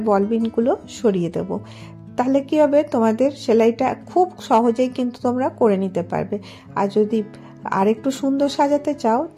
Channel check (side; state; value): both; identical; correlation 1.00